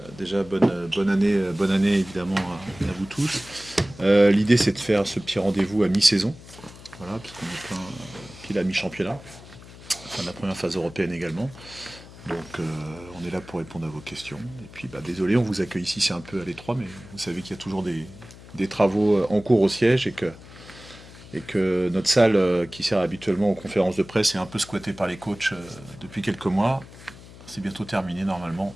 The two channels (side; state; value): left; noise; hum, 18 dB below the sound